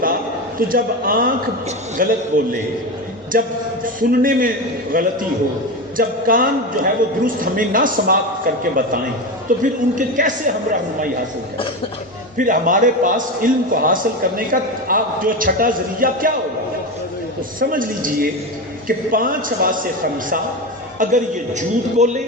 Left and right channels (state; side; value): normal; both; correlation 0.20